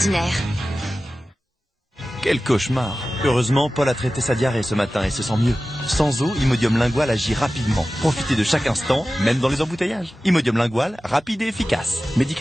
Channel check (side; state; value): both; normal; correlation 0.95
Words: Quel cauchemar! Heureusement, Paul a traité sa diarrhée ce matin et se sent mieux. Sans eau, Imodium Lingual agit rapidement. Profitez de chaque instant, même dans les embouteillages. Imodium Lingual, rapide et efficace.